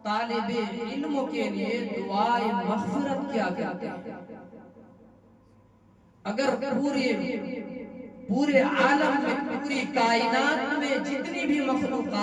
طالب علم کے لیے دعائے مغفرت کیا کرتے ہیں۔ اگر پورے عالم میں، پوری کائنات میں جتنی بھی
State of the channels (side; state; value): both; identical; correlation 1.00